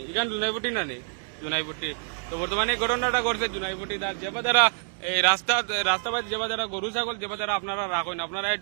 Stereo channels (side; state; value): left; silent; 60 dB below the other